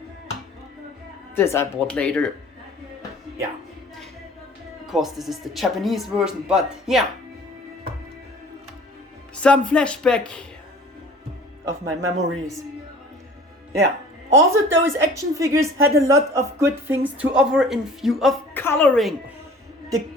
This I bought later. Yeah. Of course this is the Japanese version, but yeah. Some flashback of my memories. Yeah. Also those action figures had a lot of good things to offer in view of coloring. The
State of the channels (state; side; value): normal; both; correlation 0.48